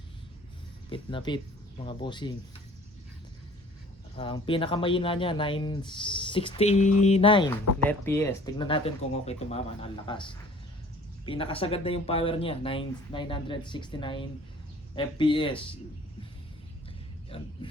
Pit na pit mga bossing. Ang pinakamahina niya 969 net PS. Tignan natin kung okay tumama ng lakas. Pinakasagad na yung power niya 969 FPS. Yan.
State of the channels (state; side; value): normal; both; correlation 0.51